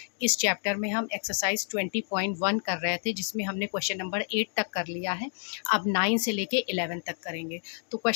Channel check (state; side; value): silent; right; digital silence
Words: इस चैप्टर में हम एक्सरसाइज 20.1 कर रहे थे, जिसमें हमने क्वेश्चन नंबर 8 तक कर लिया है। अब 9 से लेके 11 तक करेंगे। तो